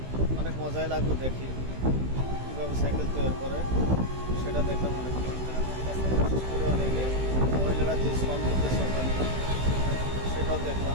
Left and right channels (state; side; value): late; left; 16 ms